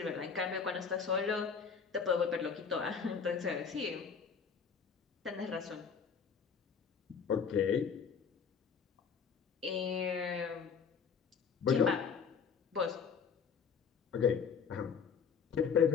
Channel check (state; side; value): quieter; right; 6.4 dB